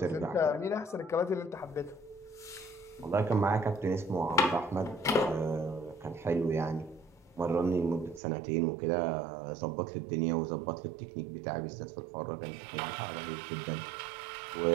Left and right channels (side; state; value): left; drops out; at 8.2 s